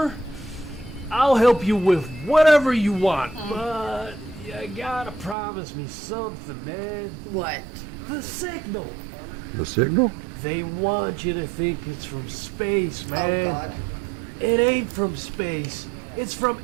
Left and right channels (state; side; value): drops out; left; at 5.4 s